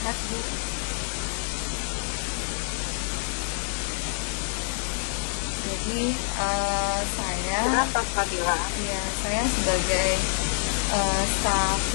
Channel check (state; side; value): silent; right; digital silence